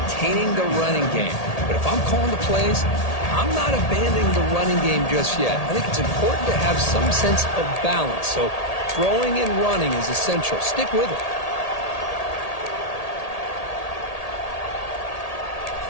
the running game. But if I'm calling the plays, I'm not abandoning the running game just yet. I think it's important to have some sense of balance. So throwing and running is essential. Stick with it.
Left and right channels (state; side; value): late; right; 1.8 ms